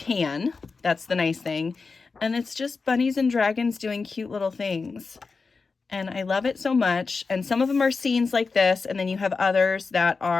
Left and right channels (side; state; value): right; quieter; 4.5 dB